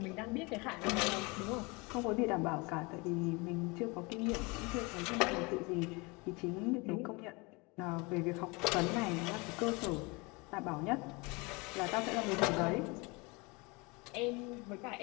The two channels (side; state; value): right; quieter; 27.1 dB